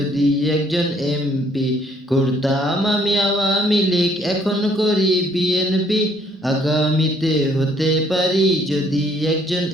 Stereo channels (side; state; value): both; normal; correlation 0.64